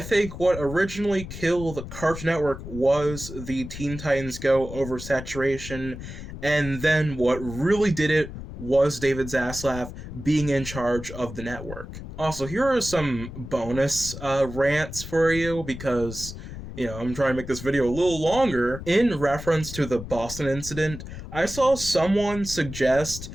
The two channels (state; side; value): noise; left; rumble, 11 dB below the sound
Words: what originally killed Cartoon Network was the Teen Titans Go oversaturation, and then what really did it was David Zaslav being in charge of the network. Also, here are some bonus rants for you because, I'm trying to make this video a little longer. In reference to the Boston incident, I saw someone suggest